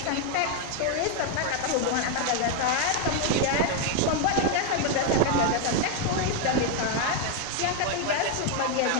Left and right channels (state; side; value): different; both; correlation 0.01